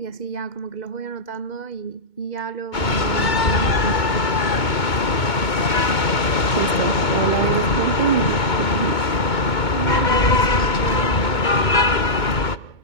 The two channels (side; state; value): right; late; 2.2 ms